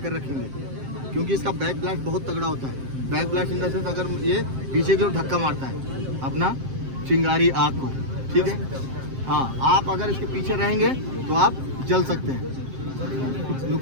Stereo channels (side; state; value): left; late; 7.6 ms